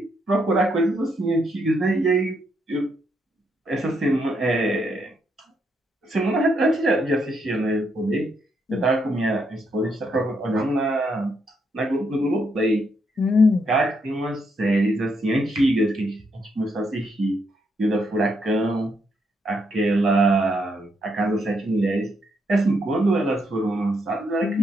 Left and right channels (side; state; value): both; normal; correlation 0.77